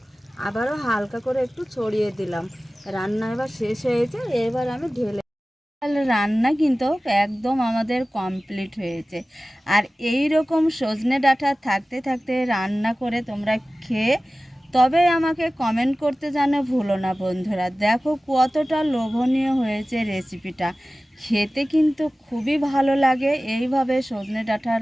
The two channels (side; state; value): both; normal; correlation 0.97